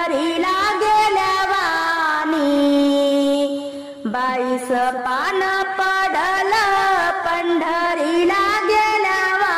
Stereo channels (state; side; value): identical; both; correlation 1.00